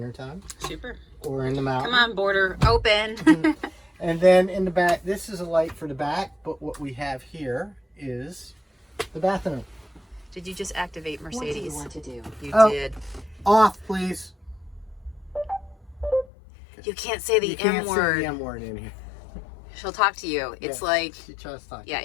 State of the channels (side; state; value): right; drops out; at 16.2 s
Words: Super. Or in the mountains. Come on, border open. And then in the back, this is a light for the back, but what we have here is the bathroom. Did you just activate Mercedes? What do you want to do? You did. Off, please. You can't say the You can't M word. say the M word in here. She'll talk to you. It's like, She tries to talk. yeah,